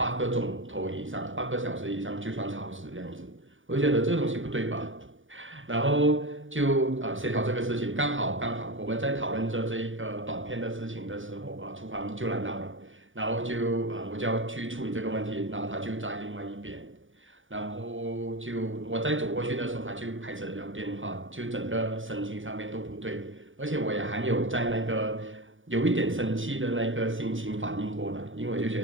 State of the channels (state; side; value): late; left; 0.57 ms